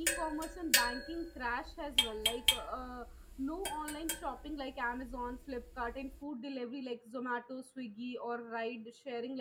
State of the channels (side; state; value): both; identical; correlation 1.00